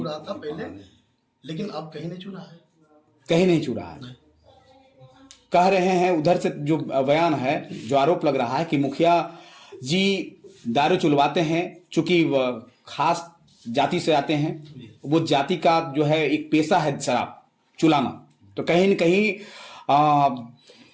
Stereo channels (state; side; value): identical; both; correlation 1.00